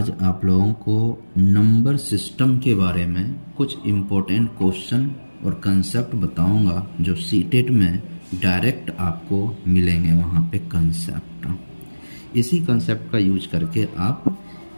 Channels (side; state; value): both; inverted; correlation -1.00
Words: आप लोगों को नंबर सिस्टम के बारे में कुछ इम्पोर्टेंट क्वेश्चन और कंसेप्ट बताऊंगा जो सीटेट में डायरेक्ट आपको मिलेंगे। वहाँ पे कंसेप्ट, इसी कंसेप्ट का यूज करके आप